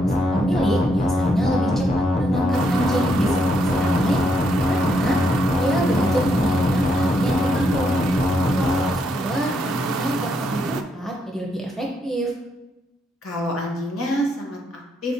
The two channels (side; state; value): both; normal; correlation 0.76